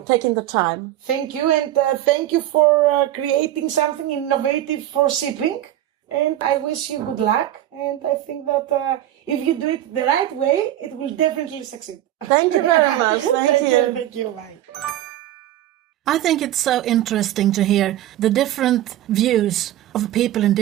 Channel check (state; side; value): quieter; left; 13.3 dB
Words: taking the time. Thank you, and thank you for creating something innovative for shipping. And I wish you good luck. And I think that if you do it the right way, it will definitely succeed. Thank you very much. Thank you. Thank you. Bye. I think it's so interesting to hear the different views of people in